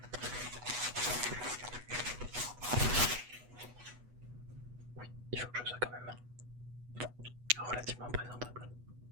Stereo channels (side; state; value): left; late; 8.2 ms